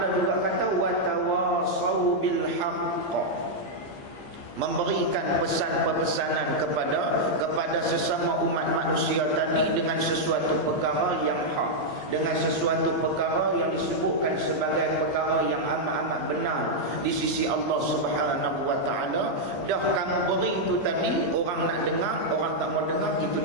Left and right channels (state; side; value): late; right; 15 ms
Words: juga kata wa tawasau bil haqq, memberikan pesan-pesanan kepada kepada sesama umat manusia tadi dengan sesuatu perkara yang hak, dengan sesuatu perkara yang disebutkan sebagai perkara yang amat-amat benar di sisi Allah Subhanahu wa taala. Dah kamu beri itu tadi, orang nak dengar, orang tak mau dengar, itu